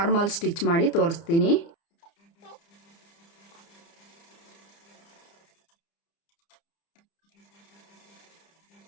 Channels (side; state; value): right; late; 30 ms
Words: ಸ್ಟಿಚ್ ಮಾಡಿ ತೋರಿಸ್ತೀನಿ.